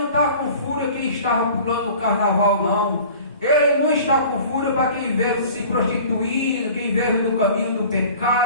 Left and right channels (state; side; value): inverted; both; correlation -0.44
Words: está com fúria quem estava pulando o carnaval, não. Ele não está com fúria para quem veio se prostituindo, quem veio no caminho do